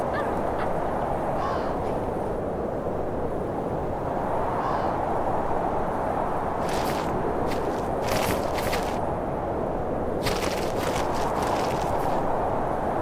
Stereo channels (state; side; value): identical; both; correlation 1.00